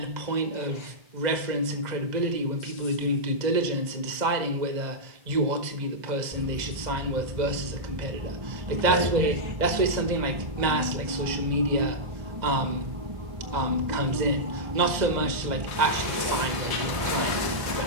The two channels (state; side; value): late; left; 2.0 ms